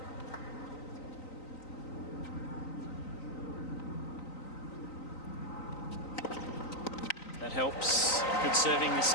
That helps. Good serving this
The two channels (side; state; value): right; late; 3.9 ms